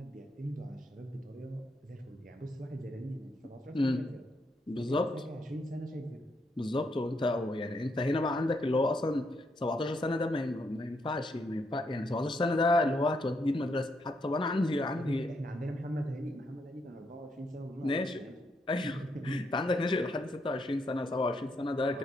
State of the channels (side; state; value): both; normal; correlation 0.77